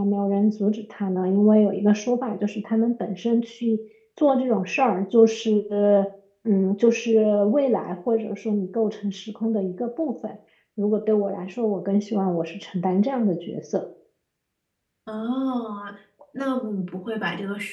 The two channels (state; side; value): identical; both; correlation 1.00